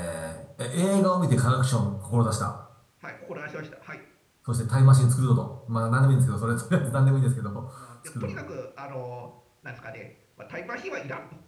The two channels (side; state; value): both; identical; correlation 1.00